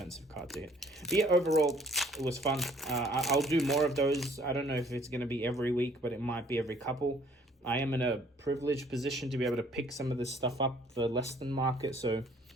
card to hit. But yeah, overall, it was fun. I'll do more of those. I don't know if it's going to be every week, but it might be every couple. I am in a privileged position to be able to pick some of this stuff up for less than market, so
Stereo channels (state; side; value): normal; both; correlation 0.59